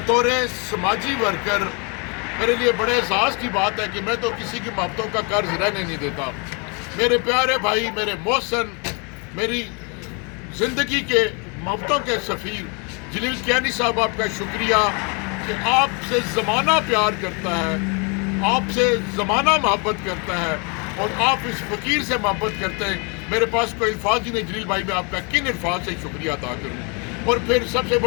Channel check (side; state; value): right; quieter; 33.6 dB